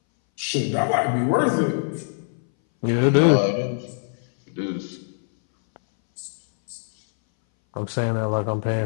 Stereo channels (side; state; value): right; silent; 61 dB below the other